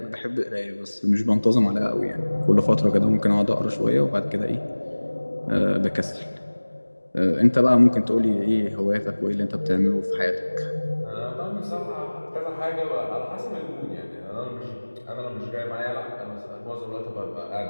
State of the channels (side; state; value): both; inverted; correlation -1.00